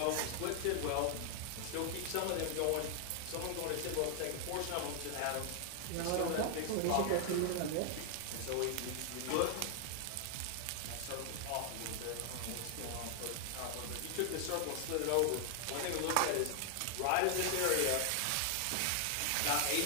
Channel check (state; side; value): different; both; correlation 0.00